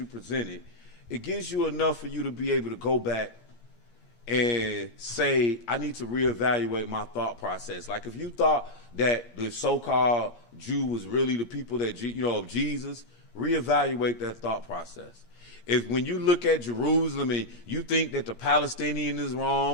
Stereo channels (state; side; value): late; right; 8.7 ms